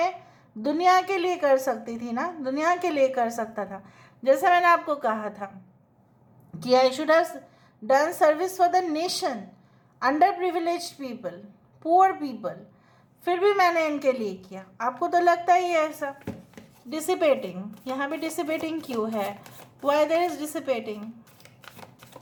दुनिया के लिए कर सकती थी ना, दुनिया के लिए कर सकता था। जैसे मैंने आपको कहा था कि I should have done service for the nation, under privileged people, poor people, फिर भी मैंने इनके लिए किया। आपको तो लगता ही है ऐसा। डिसिपेटिंग, यहाँ पे डिसिपेटिंग क्यों है? Why there is dissipating?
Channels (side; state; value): both; identical; correlation 1.00